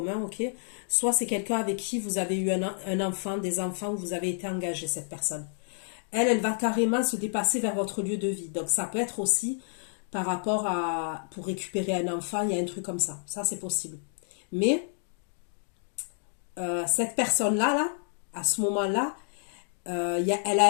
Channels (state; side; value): silent; right; 58 dB below the other